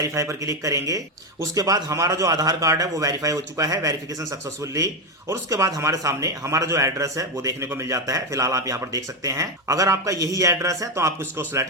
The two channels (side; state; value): both; normal; correlation 0.10